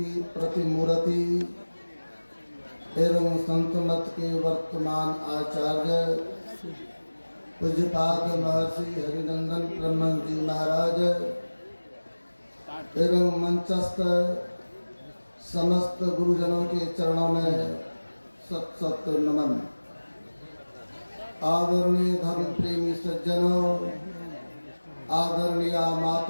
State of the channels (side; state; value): both; inverted; correlation -1.00